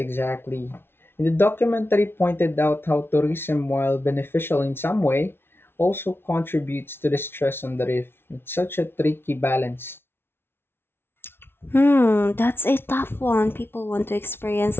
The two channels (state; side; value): late; right; 0.11 ms